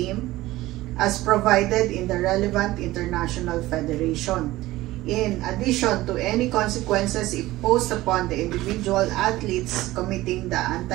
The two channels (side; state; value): left; quieter; 17.4 dB